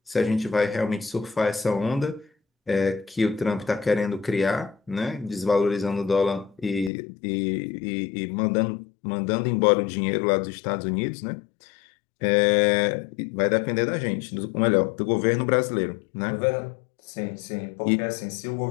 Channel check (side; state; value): right; drops out; at 6.9 s